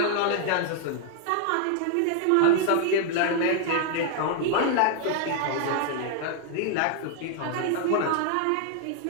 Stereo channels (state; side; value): different; both; correlation 0.00